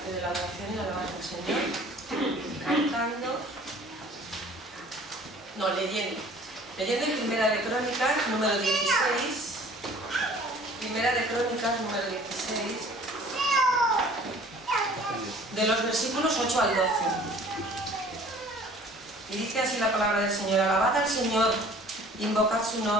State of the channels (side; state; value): both; normal; correlation 0.50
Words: de la adoración y la alabanza al Señor. Cantando, no, leyendo en Primera de Crónicas, número 16. Primera de Crónicas, número 16. De los versículos 8 al 12. Y dice así la palabra del Señor: alabad al Señor, invocad su